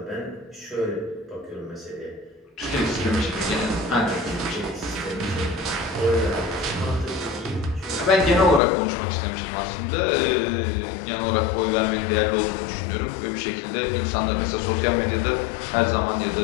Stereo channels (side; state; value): right; drops out; at 8.6 s